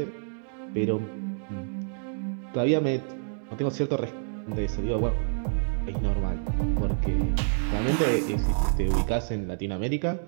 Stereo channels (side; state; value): left; silent; digital silence